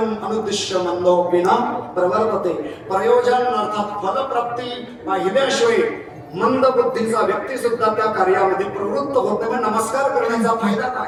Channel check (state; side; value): identical; both; correlation 1.00